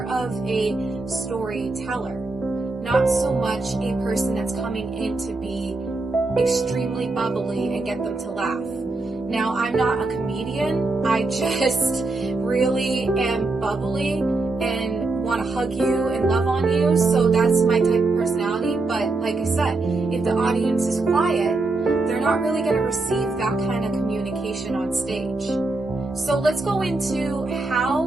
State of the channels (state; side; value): quieter; left; 3.3 dB